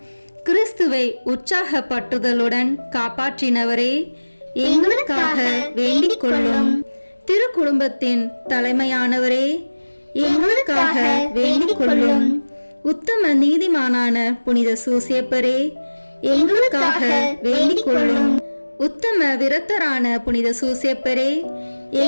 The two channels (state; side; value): inverted; both; correlation -1.00